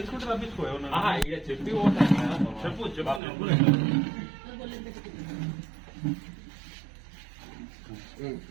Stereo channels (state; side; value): drops out; left; at 3.2 s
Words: చెప్పి చెప్పు చెప్పు.